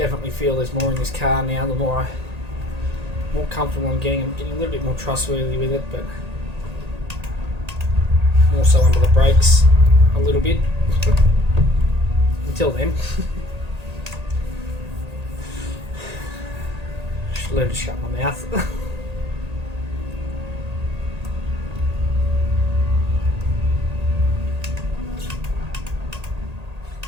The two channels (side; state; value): left; late; 1.8 ms